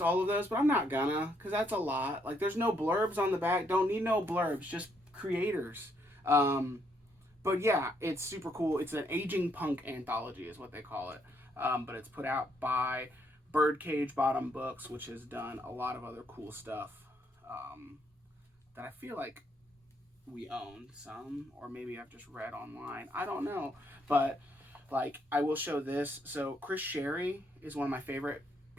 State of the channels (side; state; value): both; normal; correlation 0.73